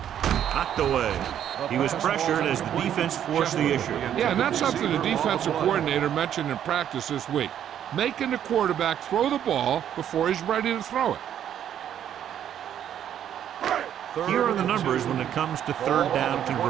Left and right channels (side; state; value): left; quieter; 10.0 dB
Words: Knocked away. He was pressured as the defense forced the issue. Yeah, and that's something the defensive coordinator mentioned in practice this week. making the quarterback throw the ball before he's ready to throw it. Here are the numbers when it comes to third down